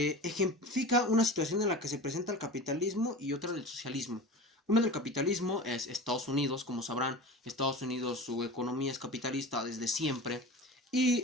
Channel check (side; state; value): both; normal; correlation 0.33